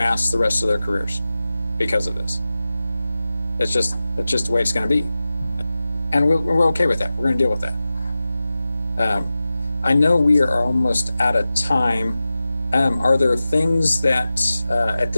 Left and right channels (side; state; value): both; inverted; correlation -0.94